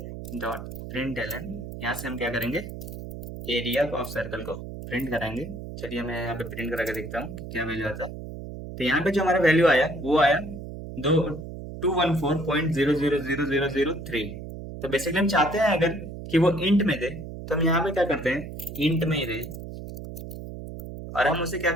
dot println. यहाँ से हम क्या करेंगे, एरिया ऑफ सर्कल को प्रिंट कराएंगे। चलिए मैं यहाँ पे प्रिंट करा के देखता हूँ कि क्या वैल्यू आता है। तो यहाँ पे जो हमारा वैल्यू आया वो आया दो 214.000003। तो बेसिकली हम चाहते हैं अगर कि वो इंट में दे, तो हम यहाँ पे क्या करते हैं, इंट में ही दे, और हम उसे क्या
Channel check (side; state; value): right; noise; hum, 10 dB below the sound